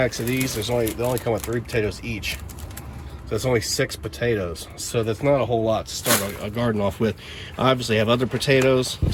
of these. They only come with 3 potatoes each. So it's only 6 potatoes. So that's not a whole lot to start a garden off with. I obviously have other potatoes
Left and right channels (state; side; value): identical; both; correlation 1.00